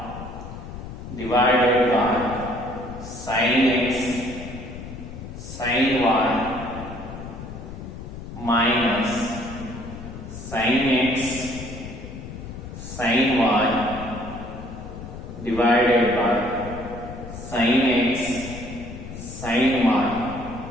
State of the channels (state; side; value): noise; left; rumble, 11 dB below the sound